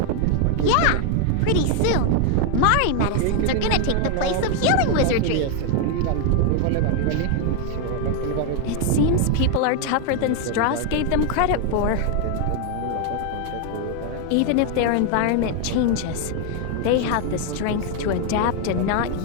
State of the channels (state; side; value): different; both; correlation 0.01